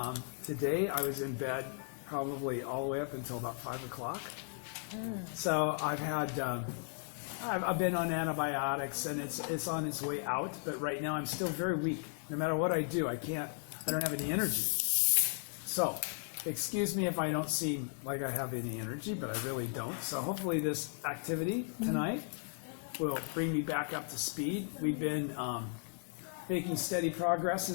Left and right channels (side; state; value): right; silent; 54 dB below the other